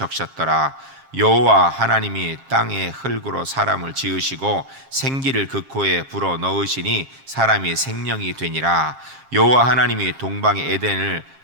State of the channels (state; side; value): late; left; 7.5 ms